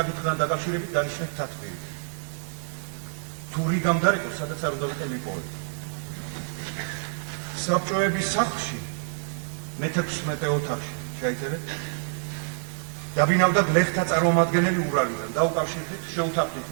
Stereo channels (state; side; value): silent; left; 60 dB below the other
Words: დაკავშირებით დანიშნეთ თათბირი. თუ რიგამ დარეკოს, სადაც არ უნდა ვიყო მიპოვეთ. საბჭოების სახლში მე-16 ოთახში ჩაიწერეთ. დაბინავდა გლეხთა წარმომადგენელი ურალიდან. დაუკავშირდით, შეუთანხმდით